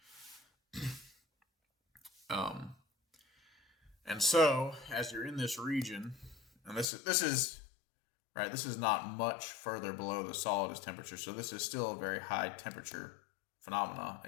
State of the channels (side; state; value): right; drops out; at 6.9 s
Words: And so, as you're in this region, and this is right, this is not much further below the solidus temperature, so this is still a very high temperature phenomena.